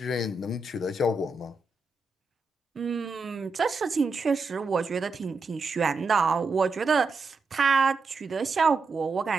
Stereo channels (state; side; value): quieter; left; 3.8 dB